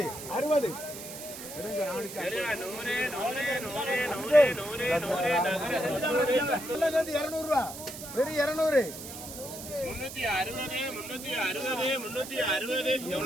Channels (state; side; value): noise; right; hiss, 11 dB below the sound